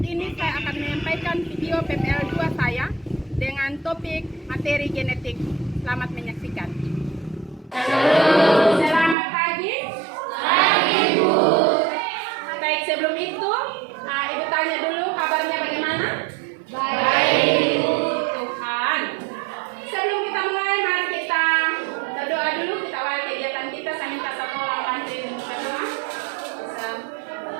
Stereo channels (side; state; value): left; drops out; at 9.2 s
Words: saya akan menyampaikan video PPL 2 saya dengan topik materi genetik. Selamat menyaksikan. Selamat pagi. Pagi, Bu. Baik, sebelum itu, Ibu tanya dulu kabarnya bagaimana? Baik, Bu. Tuhan. Sebelum kita mulai, mari kita berdoa dulu. Kita awali kegiatan kita. Saya minta satu orang bantuin berdoa.